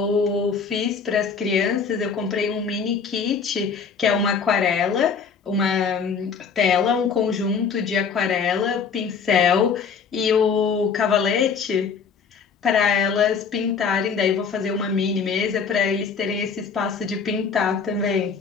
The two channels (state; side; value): quieter; right; 5.9 dB